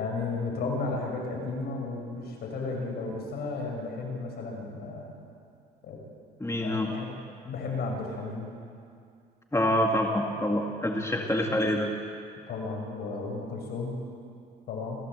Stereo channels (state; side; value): normal; both; correlation 0.57